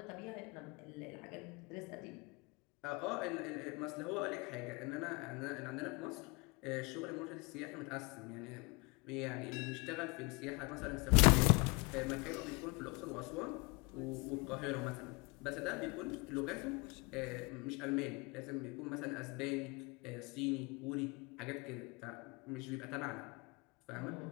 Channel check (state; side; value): quieter; right; 27.9 dB